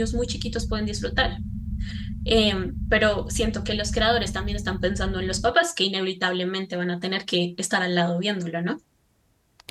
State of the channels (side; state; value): both; identical; correlation 1.00